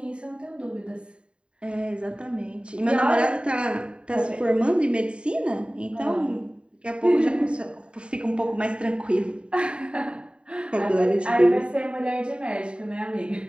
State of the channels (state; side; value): late; left; 0.054 ms